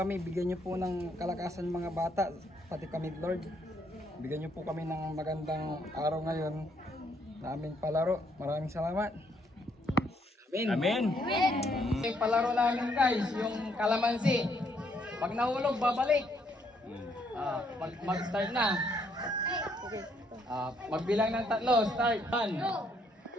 bigyan niyo po ng kalakasan mga bata, pati kami Lord. Bigyan niyo po kami ng magandang araw ngayon na aming palaro. Maraming salamat. Amen. Amen. Yung palaro namin guys, yung kalamansi. Pag nahulog, babalik. Mag-start na. Magbilang ng 3, start. 1, 2,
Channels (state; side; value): normal; both; correlation 0.71